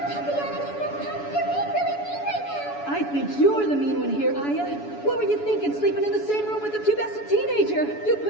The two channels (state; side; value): late; right; 7.0 ms